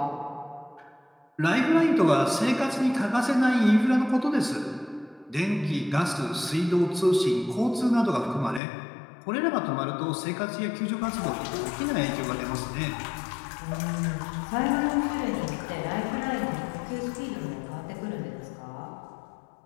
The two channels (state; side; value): drops out; right; at 8.6 s